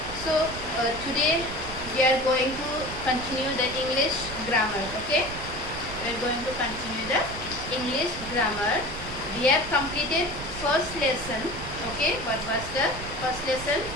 So today we are going to continue the English grammar. Okay. We are going to continue the English grammar. We have completed first lesson. Okay, what was the first lesson?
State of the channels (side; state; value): right; noise; rumble, 11 dB below the sound